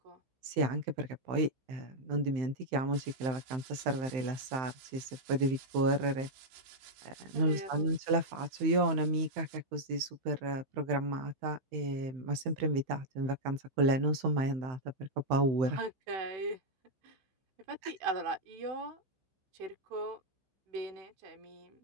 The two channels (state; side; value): late; left; 15 ms